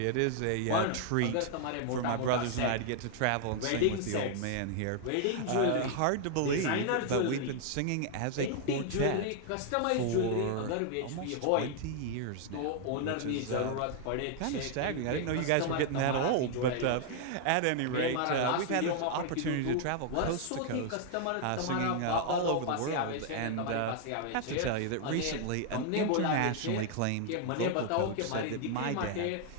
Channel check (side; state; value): both; different; correlation 0.00